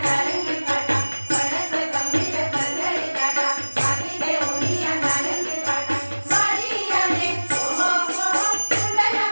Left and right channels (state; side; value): inverted; both; correlation -1.00